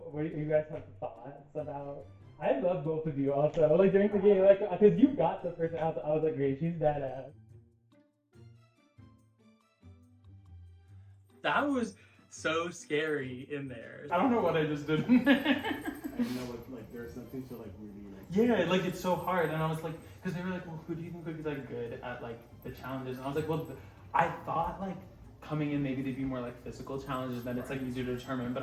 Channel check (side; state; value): both; identical; correlation 1.00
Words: what do you guys have thoughts about? I love both of you also. Like during the game, like because you got the person out, I was like, great, she's badass. That was so scary in there. I don't know what I just did. I know what, like, there's nothing to, like, really, like... Yeah, like, it's so hard. And I was like, because they were like, well, who do you think would be, like, good at, like, the challenges? And I was like, well, I thought, like, coming in, maybe they'd be more, like, physical challenges, then it's, like, easier to determine. But